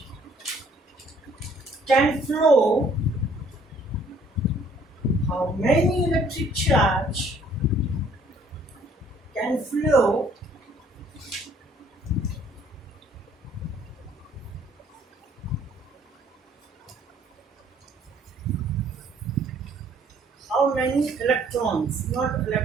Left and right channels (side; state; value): both; normal; correlation 0.60